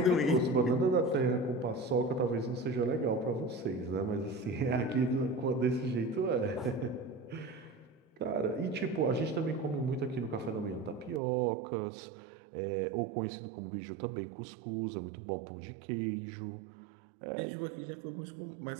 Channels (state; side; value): drops out; left; at 11.2 s